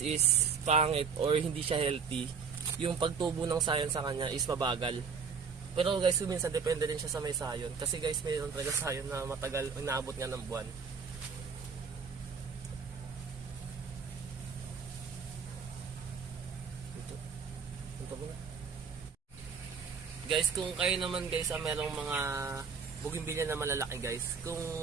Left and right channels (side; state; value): left; quieter; 5.8 dB